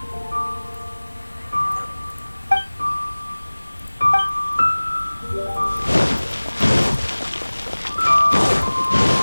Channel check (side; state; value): both; inverted; correlation -1.00